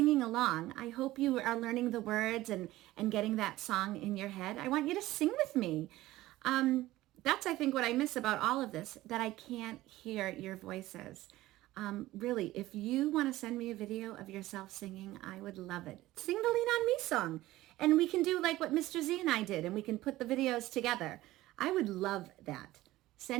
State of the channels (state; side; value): quieter; left; 16.7 dB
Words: along. I hope you are learning the words and getting that song in your head. I want you to sing with me. That's, I think, what I miss about all of this, that I can't hear your voices. Really, if you want to send me a video of yourself singing, I would love it. Sing the Lean On Me song. And we can do like what Mr. Z and I did, and we can put the videos together. I would love that.